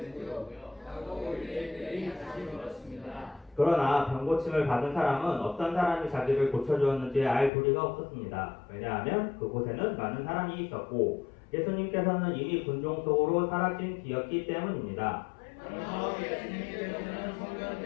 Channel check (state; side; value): drops out; right; at 7.5 s